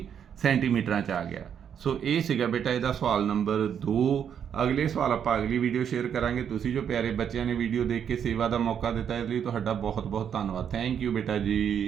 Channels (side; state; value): left; quieter; 8.3 dB